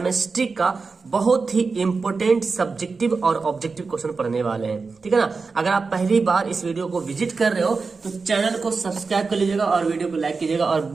का बहुत ही इंपॉर्टेंट सब्जेक्टिव और ऑब्जेक्टिव क्वेश्चन पढ़ने वाले हैं। ठीक है ना। अगर आप पहली बार इस वीडियो को विजिट कर रहे हो तो चैनल को सब्सक्राइब कर लीजिएगा और वीडियो को लाइक कीजिएगा और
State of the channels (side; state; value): left; quieter; 4.5 dB